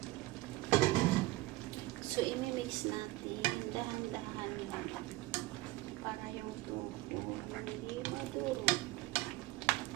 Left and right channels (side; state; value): left; quieter; 18.6 dB